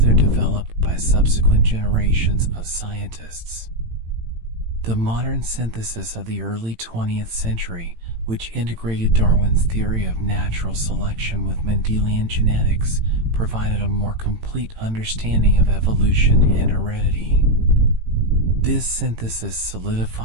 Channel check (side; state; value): left; late; 18 ms